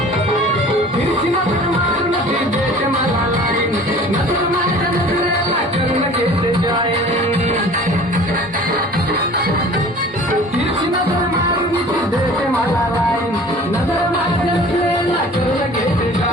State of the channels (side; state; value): both; normal; correlation 0.45